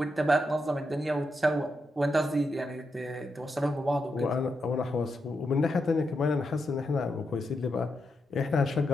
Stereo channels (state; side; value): normal; both; correlation 0.84